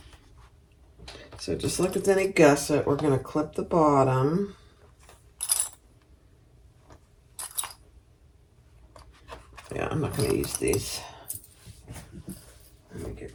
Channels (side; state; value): both; identical; correlation 1.00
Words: So just like with any gusset, we're going to clip the bottom. Yeah, I'm not going to use these. Let me get